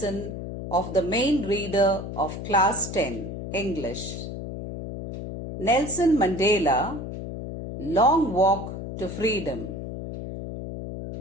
of the main reader of class 10 English. Nelson Mandela, Long Walk to Freedom.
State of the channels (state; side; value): noise; left; hum, 7 dB below the sound